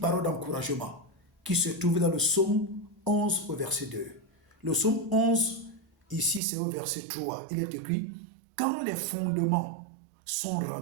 d'encouragement qui se trouve dans le psaume 11 au verset 2. Le psaume 11, ici c'est au verset 3. Il est écrit, quand les fondements sont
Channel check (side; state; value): left; drops out; at 6.4 s